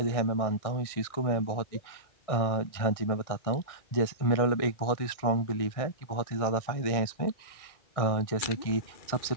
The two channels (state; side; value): late; right; 1.6 ms